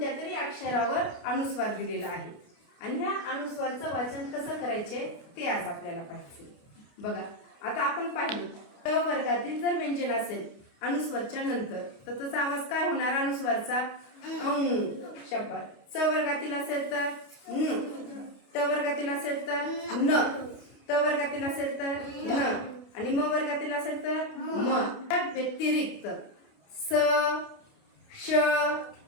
तरी अक्षरावर अनुस्वार दिलेला आहे आणि ह्या अनुस्वारचं वाचन कसं करायचे ते आज आपल्याला पाहिजे. बघा, आता आपण पाहिलं क वर्गातील जर व्यंजन असेल अनुस्वारच्या नंतर तर त्याचा आवाज काय होणार? अनुस्वारचा शब्द. च वर्गातील असेल तर न, ट वर्गातील असेल तर न, त वर्गातील असेल तर न आणि म वर्गातील असेल तर म. त्या व्यतिरिक्त स, श,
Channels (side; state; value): right; late; 29 ms